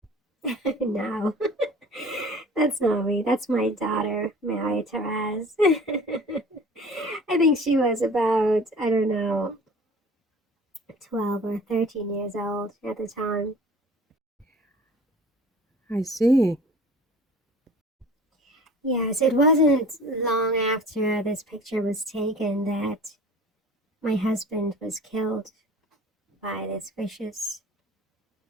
No, that's not me. That's my daughter, Marie Therese. I think she was about, I don't know, 12 or 13 years old at the time. I see. Yes, it wasn't long after this picture was taken that my husband was killed by this vicious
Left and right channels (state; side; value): normal; both; correlation 0.44